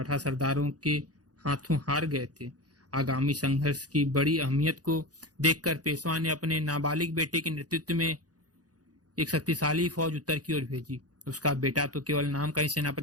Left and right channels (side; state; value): left; late; 0.68 ms